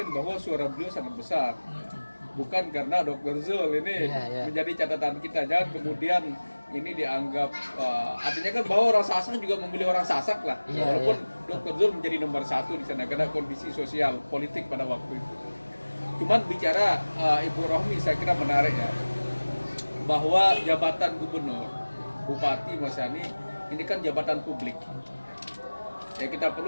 bahwa suara beliau sangat besar. Bukan karena Dr. Zul ini Iya, iya. menjadi catatan kita. Jangan kemudian ini dianggap artinya kan bahwa orang Sasak juga memilih orang Sasak lah. Iya, Walaupun Dr. Zul menjadi nomor 1 di sana karena kondisi sosial politik pada waktu itu. Cuman bicara Ibu Rohmi saya kira menarik ya, bahwa jabatan gubernur, bupati, Mas Yani ini kan jabatan publik. Ya kita perlu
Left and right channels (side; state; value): both; inverted; correlation -1.00